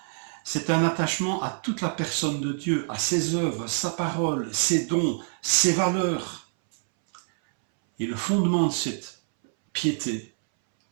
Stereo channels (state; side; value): silent; left; 61 dB below the other